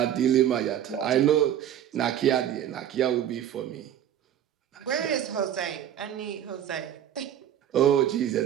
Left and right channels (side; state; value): left; quieter; 10.5 dB